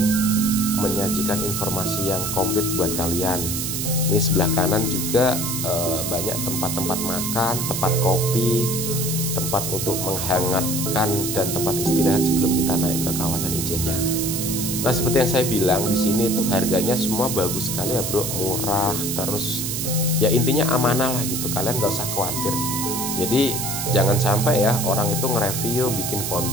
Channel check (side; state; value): right; noise; hiss, 3 dB below the sound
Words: menyajikan informasi yang komplit buat kalian. Ini sebelah kanan juga banyak tempat-tempat makan, tempat kopi, tempat untuk menghangatkan, dan tempat istirahat sebelum kita naik ke kawasan Ijennya. Nah seperti yang saya bilang, di sini tuh harganya semua bagus sekali ya bro, murah, terus ya intinya amanah lah gitu, kalian gak usah khawatir. Jadi jangan sampai ya orang itu nge-review, bikin